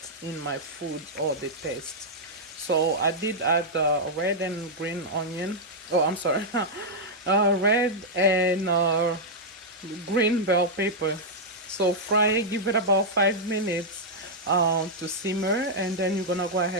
in my food or the taste. So I did add red and green onion. Oh, I'm sorry. Red and green bell pepper. So fry it, give it about 5 minutes to simmer, and then you're gonna go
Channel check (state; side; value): normal; both; correlation -0.05